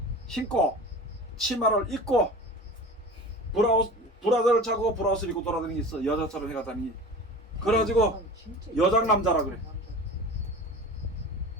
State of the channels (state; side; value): normal; both; correlation 0.35